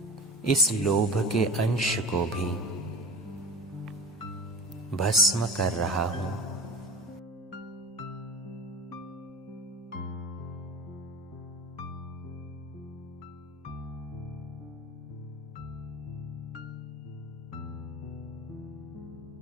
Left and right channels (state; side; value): normal; both; correlation 0.34